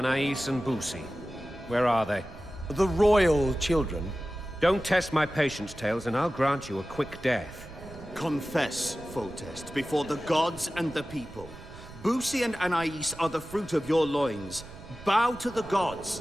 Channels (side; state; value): right; noise; rumble, 16 dB below the sound